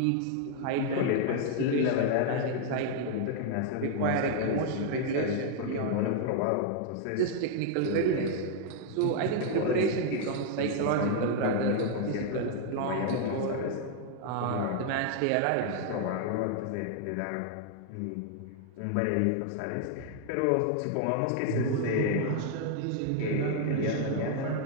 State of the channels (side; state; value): both; different; correlation 0.00